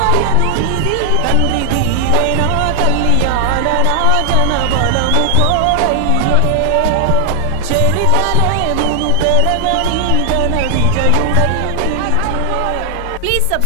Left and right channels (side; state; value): both; different; correlation 0.01